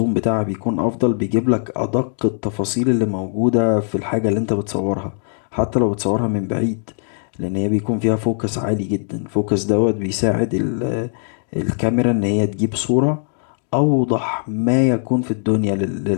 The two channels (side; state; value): right; silent; 66 dB below the other